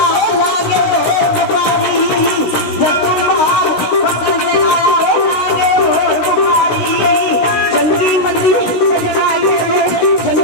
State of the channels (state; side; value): late; right; 16 ms